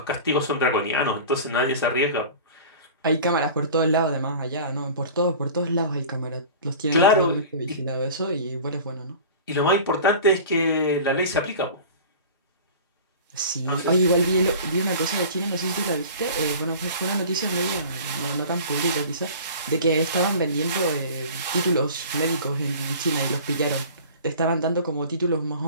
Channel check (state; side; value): inverted; both; correlation -0.39